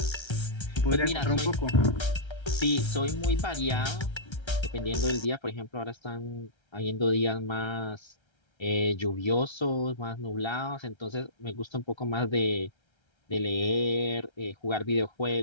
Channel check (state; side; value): late; right; 1.3 ms